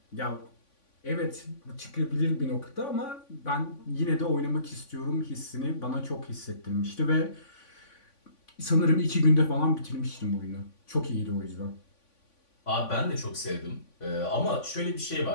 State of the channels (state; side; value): late; right; 3.5 ms